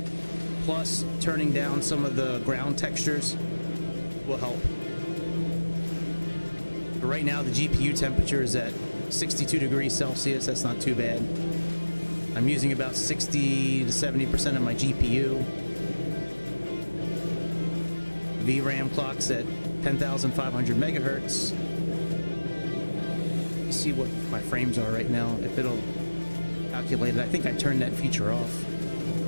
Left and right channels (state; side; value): inverted; both; correlation -1.00